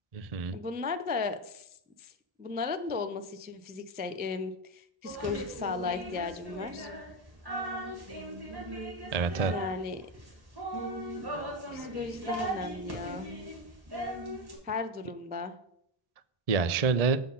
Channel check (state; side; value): late; left; 1.7 ms